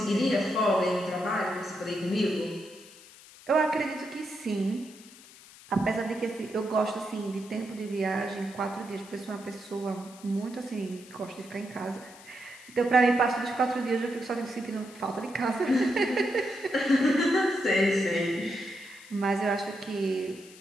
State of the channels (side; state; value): left; noise; hiss, 21 dB below the sound